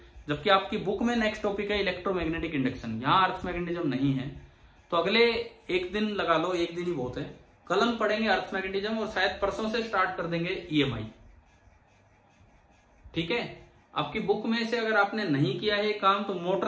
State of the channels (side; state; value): both; identical; correlation 1.00